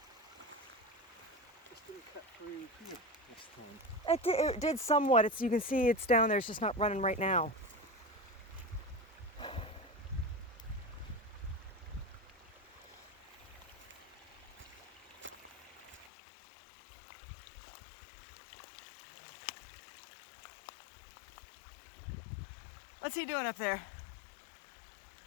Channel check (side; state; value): right; drops out; at 16.1 s